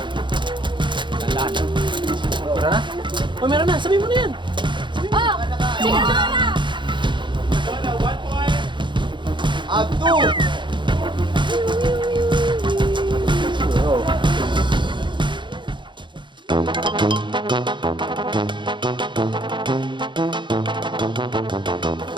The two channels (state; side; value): late; left; 0.23 ms